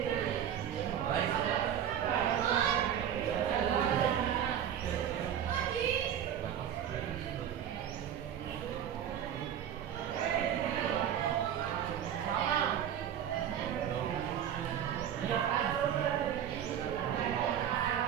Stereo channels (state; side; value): quieter; left; 9.6 dB